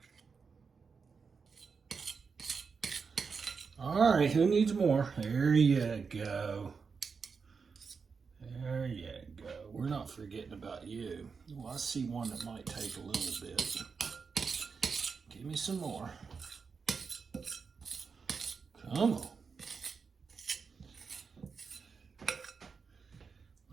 All right, who needs more? There you go. There you go. We're not forgetting about you. Well, I see one that might take a little bit. Give me some more. Come on.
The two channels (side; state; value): left; quieter; 5.4 dB